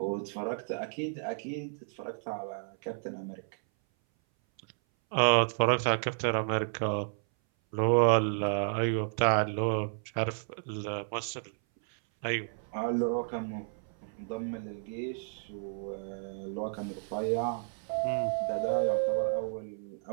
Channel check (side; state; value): left; silent; 57 dB below the other